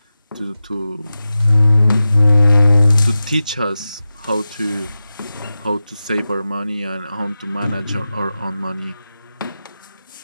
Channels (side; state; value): both; inverted; correlation -0.93